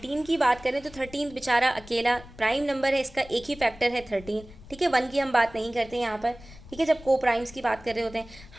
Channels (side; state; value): left; noise; rumble, 19 dB below the sound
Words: की बात करें तो 13 बेचारा अकेला प्राइम नंबर है, इसका एक ही फैक्टर है 13। ठीक है, 1 की हम बात नहीं करते यहाँ पर। ठीक है, जब को प्राइम्स की बात कर रहे होते हैं।